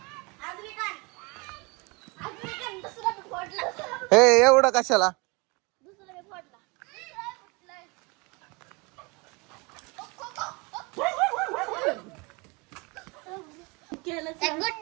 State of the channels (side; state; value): left; quieter; 27.9 dB